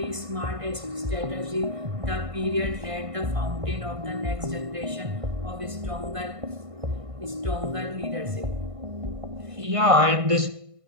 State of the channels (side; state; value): left; late; 1.5 ms